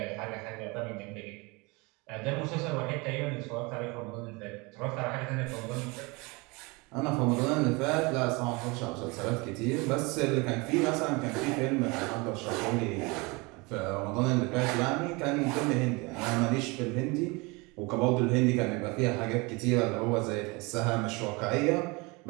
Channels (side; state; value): left; quieter; 26.5 dB